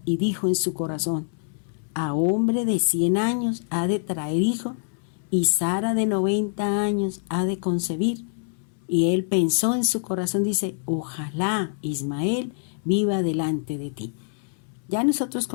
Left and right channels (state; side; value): silent; right; 62 dB below the other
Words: y dijo en su corazón: a hombre de 100 años ha de traer hijo, y Sara de 90 años ha de concebir. Y él pensó en su corazón, dice: ojalá Ismael viva delante de ti. Ya nosotros